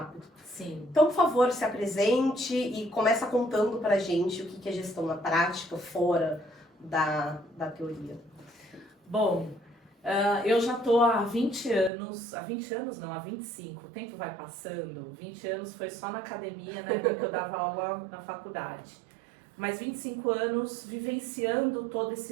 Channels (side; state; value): left; drops out; at 11.9 s